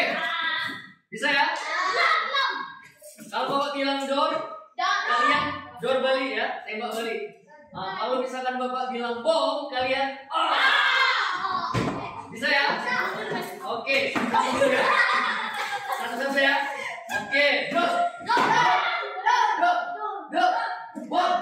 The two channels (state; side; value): identical; both; correlation 1.00